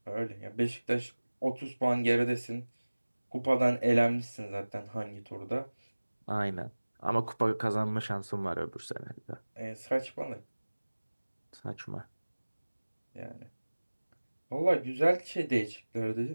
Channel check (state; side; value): inverted; both; correlation -1.00